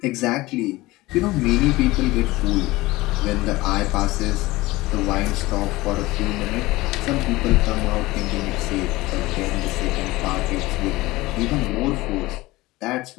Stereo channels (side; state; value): right; quieter; 19.7 dB